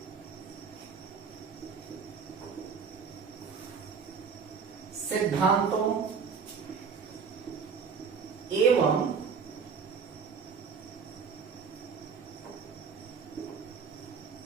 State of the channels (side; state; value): left; quieter; 5.9 dB